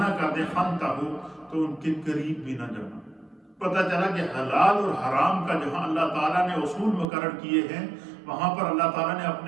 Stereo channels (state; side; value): drops out; left; at 7.1 s